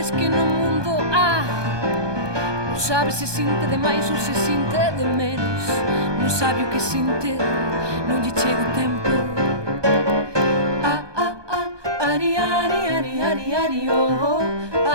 que no mundo há. Non sabe se sinte de máis ou se sinte de menos. Non sabe o que sinte, non lle chega o tempo. Ari, ari, ari, ari, ari, oh.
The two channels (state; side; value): late; left; 1.2 ms